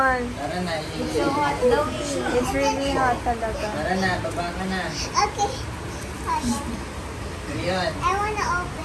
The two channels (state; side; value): identical; both; correlation 1.00